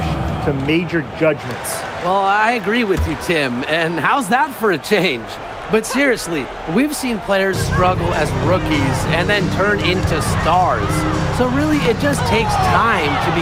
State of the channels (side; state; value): both; identical; correlation 1.00